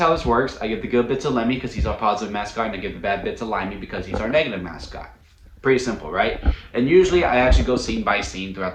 this works. I give the good bit to Lemmy because he's our positive mascot, and I give the bad bit to Limey because he's our negative mascot. Pretty simple, right? And usually I actually go scene by scene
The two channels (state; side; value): identical; both; correlation 1.00